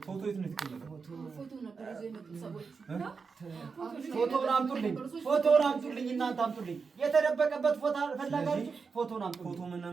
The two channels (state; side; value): quieter; left; 5.1 dB